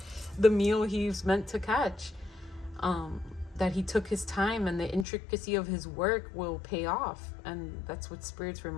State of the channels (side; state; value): right; drops out; at 5.1 s